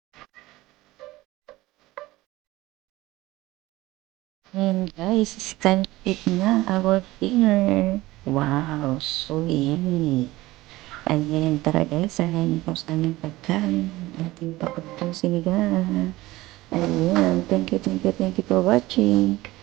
And guys, it's time to eat na our dinner. Wow, so yummy. Ayan, tara guys, ayan po sa aming pagkain. Ating pakuntong sinigang. Ayan, thank you for watching.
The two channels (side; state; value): left; quieter; 18.5 dB